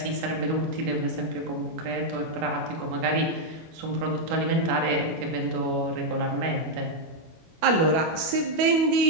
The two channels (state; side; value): late; left; 25 ms